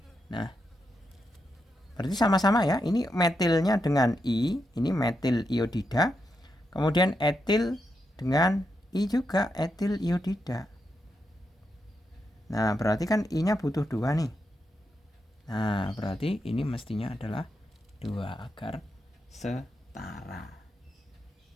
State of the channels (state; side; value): normal; both; correlation 0.84